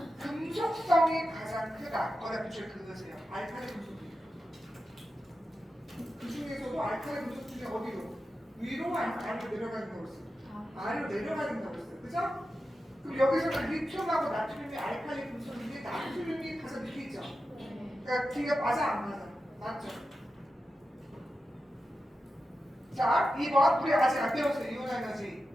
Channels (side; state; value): both; normal; correlation 0.91